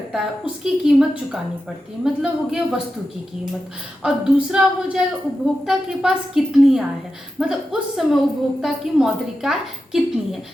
है उसकी कीमत चुकानी पड़ती है, मतलब हो गया वस्तु की कीमत। और दूसरा हो जाएगा उपभोक्ता के पास कितनी आय है, मतलब उस समय उपभोक्ता की मौद्रिक आय कितनी है।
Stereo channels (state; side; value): normal; both; correlation 0.90